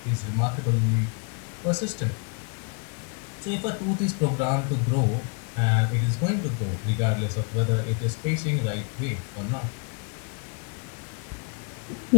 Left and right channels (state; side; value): quieter; right; 35.7 dB